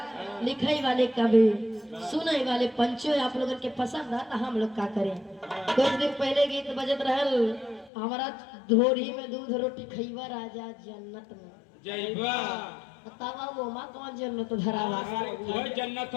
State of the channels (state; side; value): drops out; right; at 7.9 s